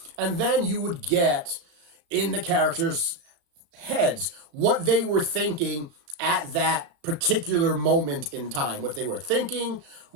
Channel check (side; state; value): left; late; 35 ms